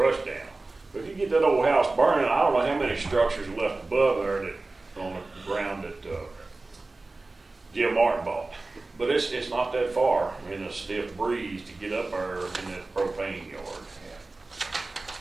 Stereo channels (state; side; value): quieter; left; 3.3 dB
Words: down. But if you get that old house burning, I don't know how many structures are left above there that on the ground that Jim Martin bought. But it's not that far in a stiff breeze to get up there in that propane yard.